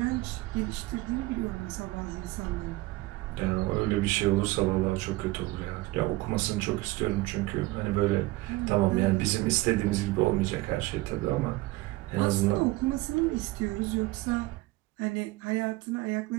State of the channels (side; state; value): left; quieter; 19.9 dB